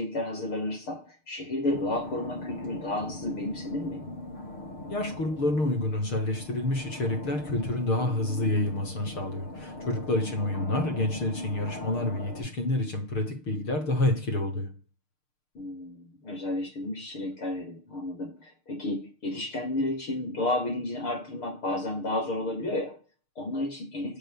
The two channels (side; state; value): right; late; 6.6 ms